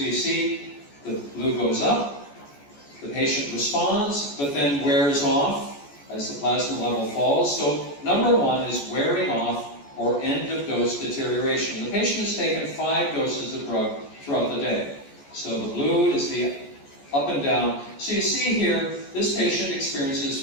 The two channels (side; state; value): right; late; 14 ms